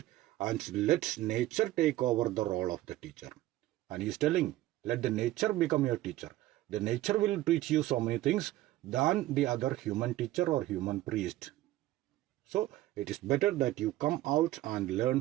and let nature take over the role of the teacher. And he is telling, let the nature become your teacher. The nature will teach you so many things than the other human teacher or human priest. So it is better that you come out and learn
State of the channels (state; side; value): quieter; left; 15.6 dB